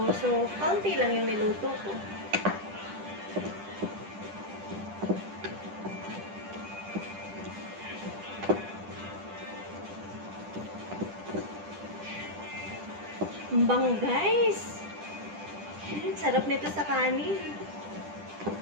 so kaunti lang yung niluto ko. Ang bango guys! Sarap nito sa kanin.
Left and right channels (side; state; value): left; late; 10 ms